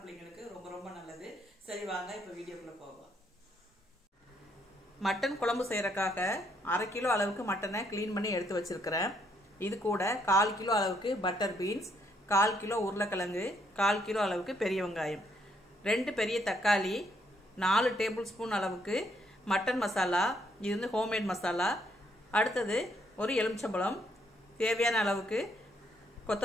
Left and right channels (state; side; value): normal; both; correlation 0.72